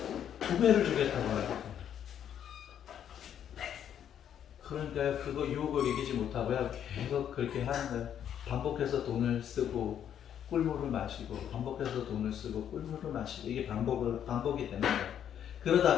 2배를 주겠다고 해요. 그러니까 그거 유혹을 이기지 못하고요. 계속 그렇게 하는 거예요. 반복해서 돈을 쓰고 꿀물을 마시고 반복해서 돈을 쓰고 꿀물을 마시고 이게 반복이 되는 거예요.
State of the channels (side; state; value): right; quieter; 9.5 dB